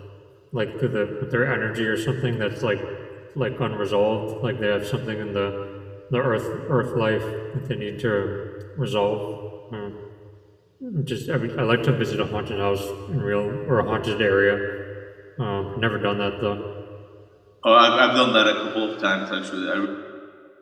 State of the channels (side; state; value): both; identical; correlation 1.00